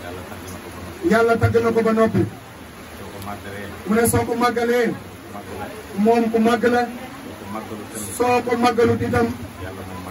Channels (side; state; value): both; identical; correlation 1.00